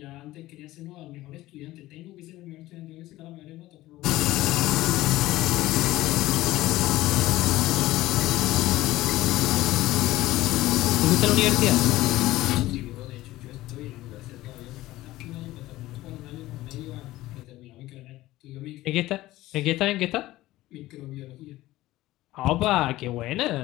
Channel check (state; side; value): quieter; right; 16.8 dB